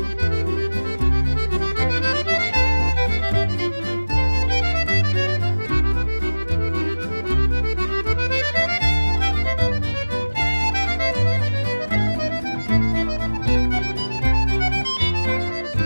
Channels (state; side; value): inverted; both; correlation -1.00